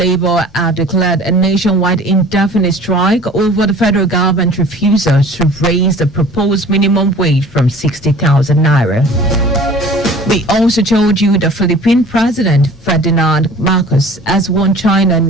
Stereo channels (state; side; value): normal; both; correlation 0.46